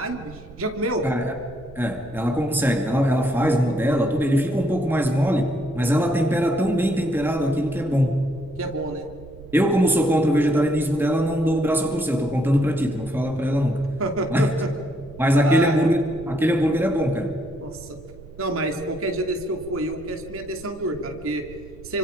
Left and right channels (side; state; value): right; noise; rumble, 18 dB below the sound